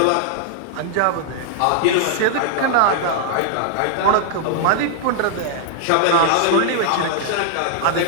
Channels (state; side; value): different; both; correlation -0.01